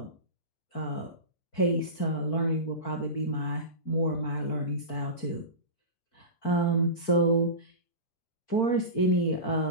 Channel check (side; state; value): right; late; 4.5 ms